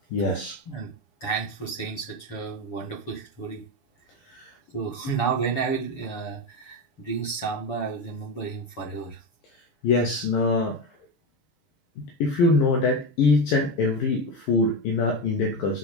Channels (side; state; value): right; late; 7.0 ms